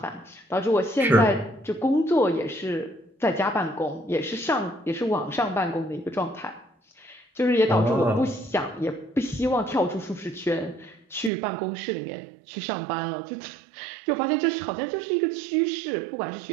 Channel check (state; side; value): drops out; left; at 11.3 s